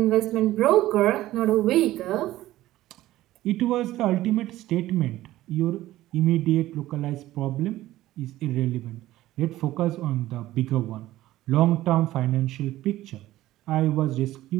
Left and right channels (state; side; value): quieter; left; 15.4 dB